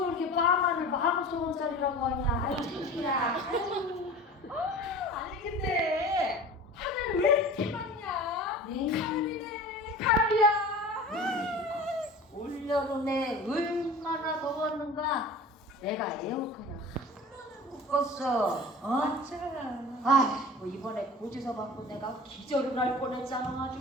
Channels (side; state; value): both; normal; correlation 0.38